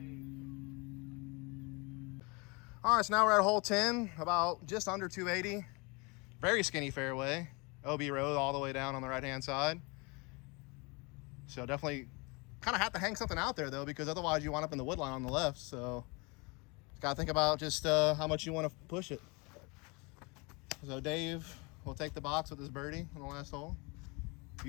All right, so now we're at hole 10, about just under 280. Very skinny fairway. OB road all the way down on the right-hand side. So definitely kind of have to hang something out there, though, because otherwise you wind up in the woodline on the left. So got to think about just how much you want to push it. So Dave will take the box with his birdie on the last hole.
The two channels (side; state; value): right; quieter; 28.7 dB